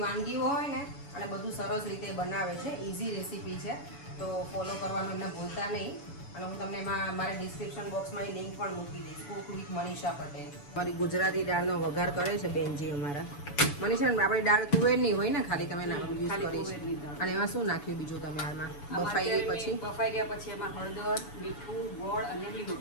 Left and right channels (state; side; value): late; right; 7.0 ms